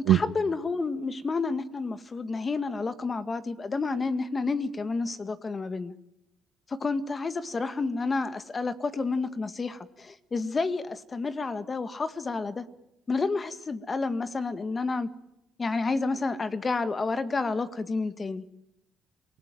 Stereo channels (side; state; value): both; normal; correlation 0.85